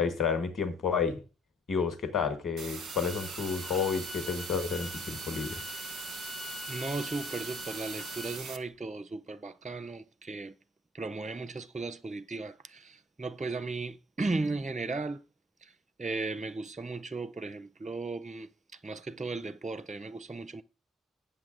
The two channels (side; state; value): both; normal; correlation 0.57